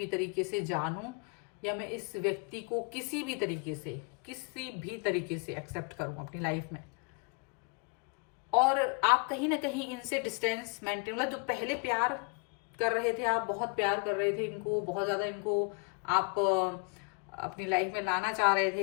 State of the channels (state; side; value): quieter; right; 33.5 dB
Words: तरीके से जानूं, या मैं इस व्यक्ति को किसी भी तरीके से एक्सेप्ट करूं अपनी लाइफ में। और आप कहीं ना कहीं इनसे डिस्टेंस मेंटेन, मतलब जो पहले प्यार कर रहे थे, आप बहुत प्यार कर रहे थे इनको, बहुत ज्यादा इनको आप अपनी लाइफ में लाना चाह रहे